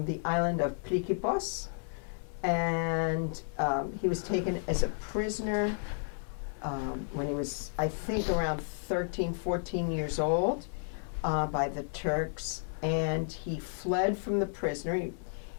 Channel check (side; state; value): right; silent; digital silence